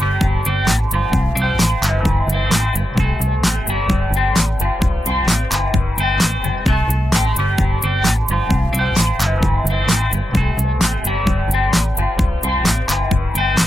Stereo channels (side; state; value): both; normal; correlation 0.89